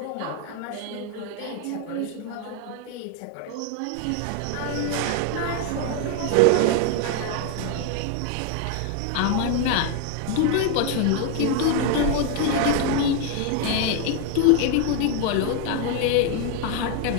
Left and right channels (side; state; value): both; different; correlation 0.01